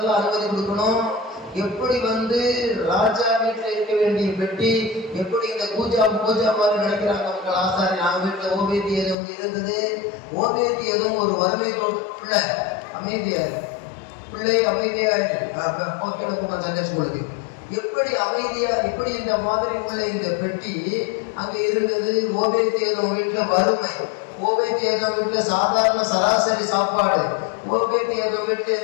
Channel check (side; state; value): right; drops out; at 9.2 s